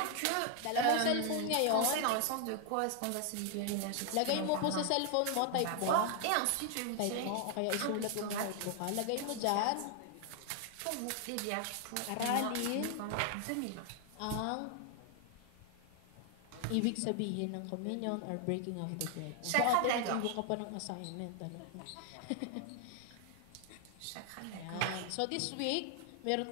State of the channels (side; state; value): both; different; correlation 0.00